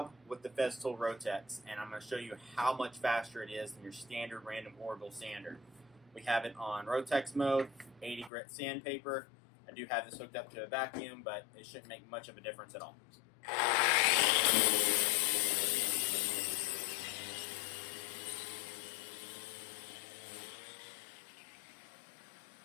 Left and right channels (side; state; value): right; drops out; at 8.3 s